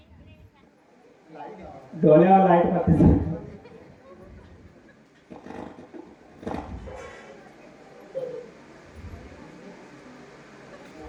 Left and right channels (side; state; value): both; identical; correlation 1.00